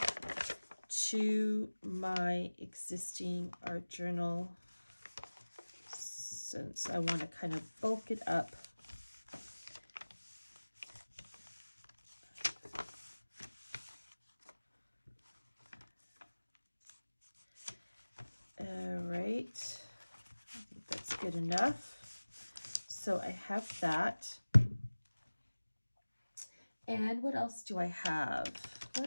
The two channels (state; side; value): inverted; both; correlation -1.00